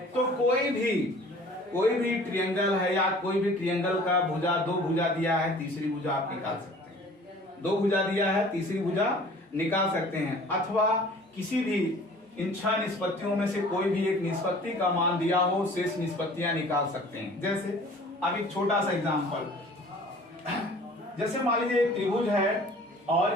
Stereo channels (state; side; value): normal; both; correlation 0.48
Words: तो कोई भी ट्रायंगल है या कोई भी ट्रायंगल का भुजा, 2 भुजा दिया है, तीसरी भुजा आप निकाल सकते हैं। 2 भुजा दिया है, तीसरी भुजा निकाल सकते हैं। अथवा किसी भी इन 6 निष्पत्तियों में से कोई भी एक निष्पत्ति का मान दिया हो, शेष निष्पत्तियां निकाल सकते हैं। जैसे अब एक छोटा सा एग्जांपल, जैसे मान लीजिए एक त्रिभुज है और